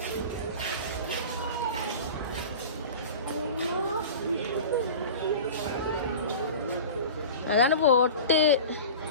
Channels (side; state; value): both; inverted; correlation -0.35